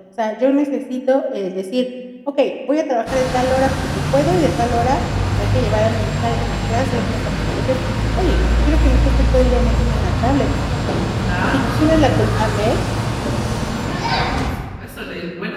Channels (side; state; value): both; identical; correlation 1.00